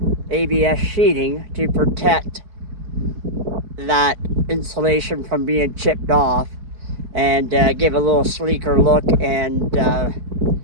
ABS sheeting to protect that insulation from being chipped off and give a little sleeker look and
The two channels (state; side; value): late; left; 4.5 ms